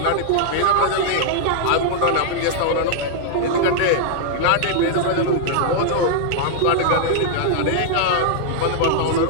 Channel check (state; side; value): different; both; correlation -0.01